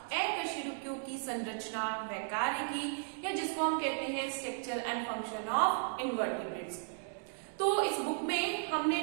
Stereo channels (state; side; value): silent; left; digital silence